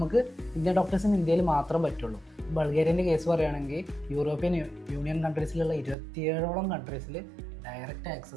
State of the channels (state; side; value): drops out; left; at 6.0 s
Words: ഇന്ത്യൻ ഡോക്ടേഴ്സിന് ഇന്ത്യയിൽ മാത്രം പറ്റുള്ളൂ. ബൾഗേറിയൻ്റെ കേസ് പറയുകയാണെങ്കിൽ യൂറോപ്യൻ യൂണിയൻ കൺട്രീസിലുള്ള 27ഓളം കൺട്രീസിൽ ഡയറക്റ്റ്